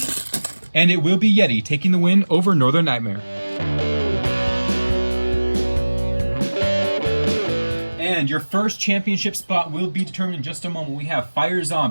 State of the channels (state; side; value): inverted; both; correlation -1.00